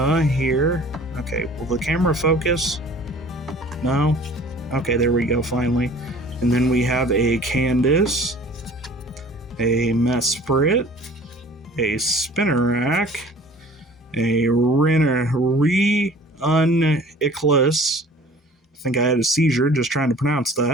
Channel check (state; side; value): normal; both; correlation 0.48